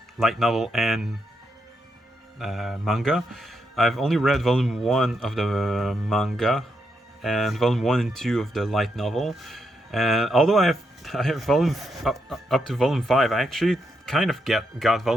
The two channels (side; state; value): both; normal; correlation 0.81